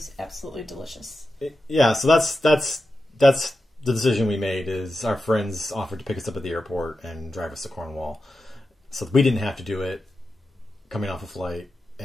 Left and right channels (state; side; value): normal; both; correlation 0.91